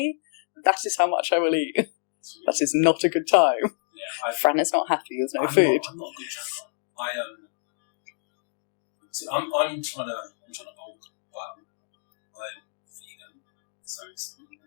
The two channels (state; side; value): silent; right; digital silence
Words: that is how much I will eat. That is not a good time. Yeah, Fran is not happy, there's no food. I'm not a good tracker. I'm trying to bulk, but I'm vegan, so it's